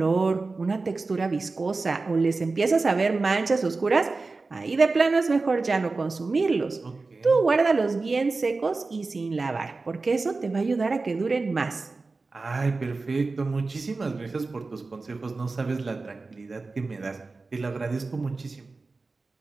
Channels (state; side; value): quieter; left; 3.8 dB